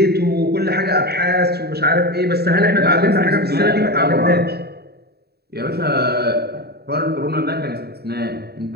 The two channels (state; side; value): late; left; 0.47 ms